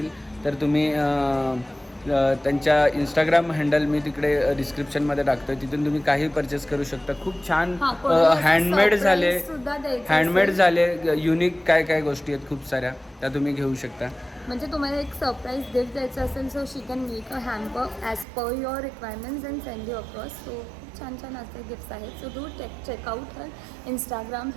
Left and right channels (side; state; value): left; drops out; at 18.2 s